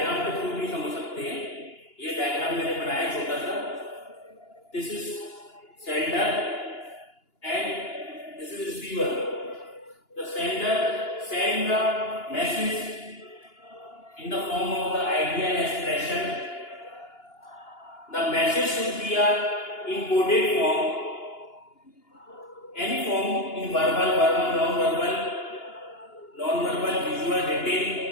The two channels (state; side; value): late; right; 2.9 ms